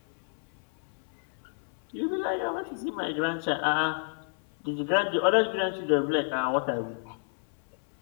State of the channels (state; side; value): silent; right; 58 dB below the other